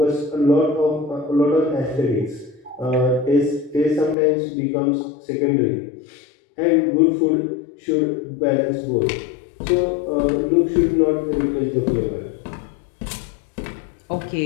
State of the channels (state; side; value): drops out; right; at 4.2 s